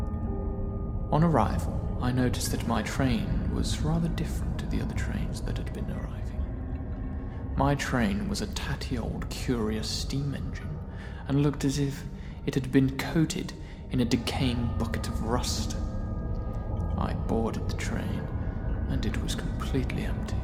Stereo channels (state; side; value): identical; both; correlation 1.00